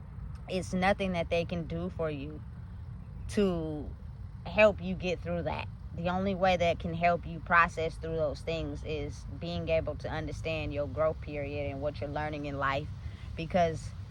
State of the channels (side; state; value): both; identical; correlation 1.00